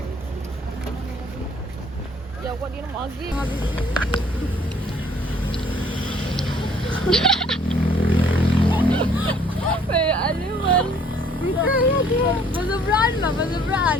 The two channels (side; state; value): both; normal; correlation 0.59